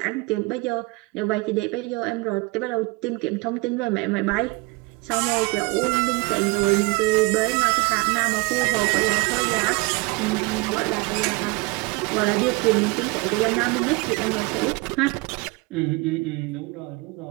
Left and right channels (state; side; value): quieter; left; 25.5 dB